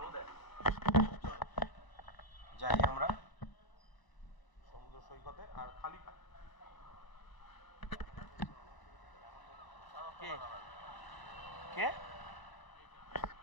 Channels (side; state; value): right; late; 1.0 ms